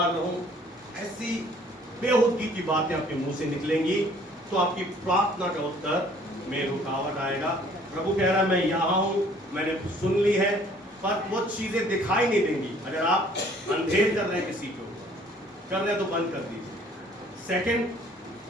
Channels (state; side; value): normal; both; correlation 0.57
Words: रहूं, ऐसी बेहुदगी की बातें आपके मुंह से निकलेंगी तो आपकी प्रार्थना का उत्तर में रुकावट आएगा। प्रभु कह रहा है मैं यहाँ हूं, मैंने सुन ली है, पर वो चीजें दिखाई नहीं देंगी। अगर आप अंधेर कर रहे हैं किसी को, कर रहे हैं तो बंद कर दीजिए। सेकंड,